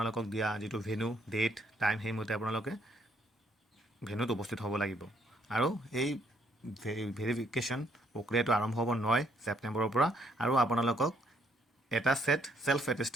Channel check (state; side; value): normal; both; correlation 0.69